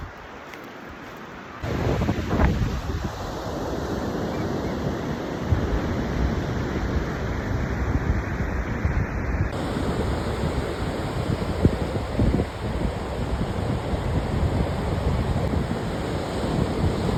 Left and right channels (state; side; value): identical; both; correlation 1.00